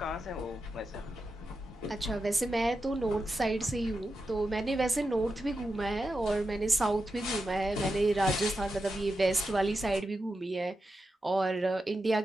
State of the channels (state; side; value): normal; both; correlation 0.89